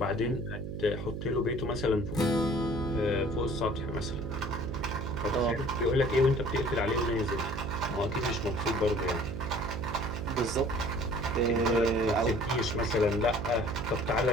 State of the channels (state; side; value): noise; right; hum, 6 dB below the sound